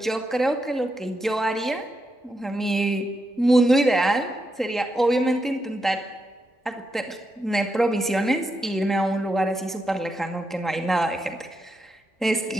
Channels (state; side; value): normal; both; correlation 0.84